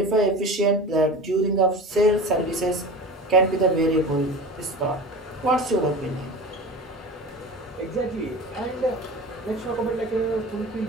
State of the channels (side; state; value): both; normal; correlation 0.32